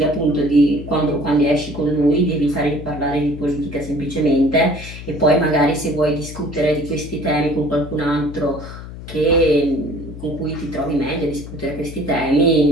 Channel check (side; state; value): left; noise; hum, 12 dB below the sound